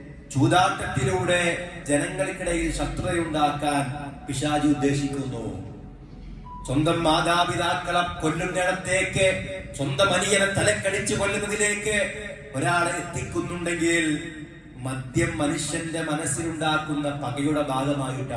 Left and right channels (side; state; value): both; identical; correlation 1.00